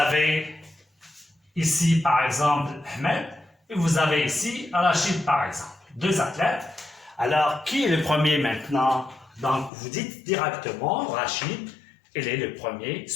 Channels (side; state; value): right; drops out; at 9.7 s